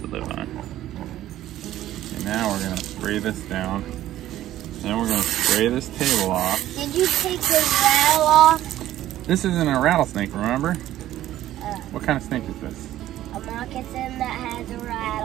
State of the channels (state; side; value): quieter; left; 13.5 dB